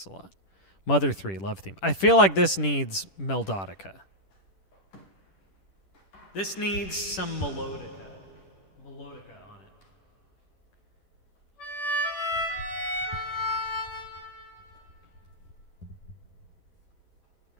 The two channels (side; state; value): right; late; 10 ms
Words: a lot. Mother 3 Love Theme. I feel like this needs Melodica. This needs some melodica. Melodica on it.